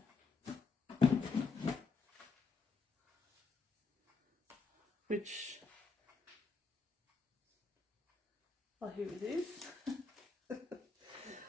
Which, oh, here it is.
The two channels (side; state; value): right; quieter; 4.4 dB